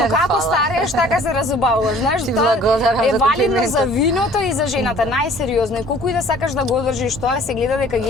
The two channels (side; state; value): both; normal; correlation 0.52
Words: како старееш, така се разубавуваш, знаеш, Ти тоа благодарам е за валидно комплиментот. за виното и за жената, најсериозно. И колку и да сакаш да го одржиш тоа, се гледа дека